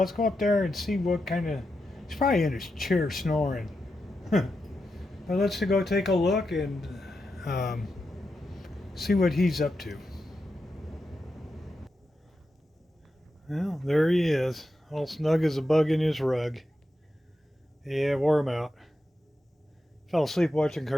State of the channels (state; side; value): normal; both; correlation 0.88